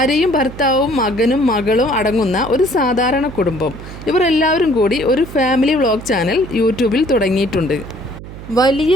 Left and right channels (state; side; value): noise; right; hum, 13 dB below the sound